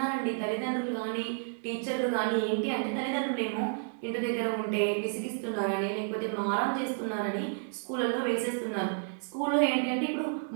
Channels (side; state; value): left; silent; digital silence